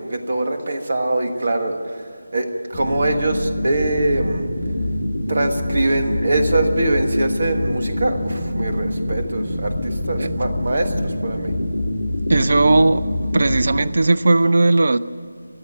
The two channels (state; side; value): inverted; both; correlation -0.93